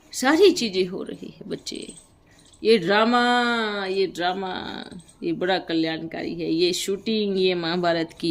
सारी चीजें हो रही है बच्चे। ये ड्रामा ये बड़ा कल्याणकारी है। ये शूटिंग, ये महाभारत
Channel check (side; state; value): both; identical; correlation 1.00